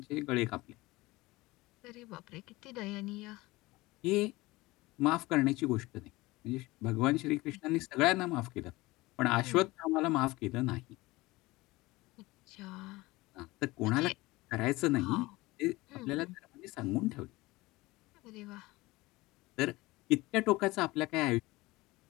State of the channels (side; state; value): right; quieter; 20.7 dB